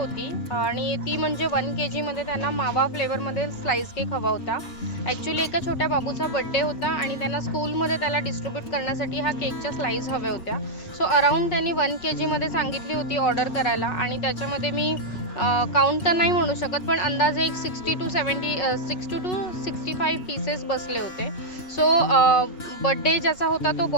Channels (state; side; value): late; right; 5.5 ms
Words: आणि ती म्हणजे 1 kgमध्ये त्यांना मावा फ्लेवरमध्ये स्लाईस केक हवा होता. ॲक्च्युली एका छोट्या बाबूचा बड्डे होता आणि त्यांना स्कूलमध्ये त्याला डिस्ट्रीब्यूट करण्यासाठी ह्या केकच्या स्लाईस हव्या होत्या. सो अराऊंड त्यांनी 1 kgमध्ये सांगितली होती ऑर्डर करायला आणि त्याच्यामध्ये मी काउंट तर नाही म्हणू शकत, पण अंदाजे एक 60 टू 65 पीसेस बसले होते. सो बड्डे ज्याचा होता तो